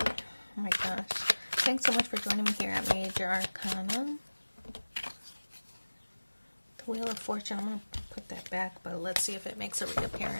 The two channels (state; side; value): inverted; both; correlation -1.00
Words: my gosh. Thanks so much for joining me here at Major Arcana. The Wheel of Fortune. I'm going to put that back, but let's see if it makes a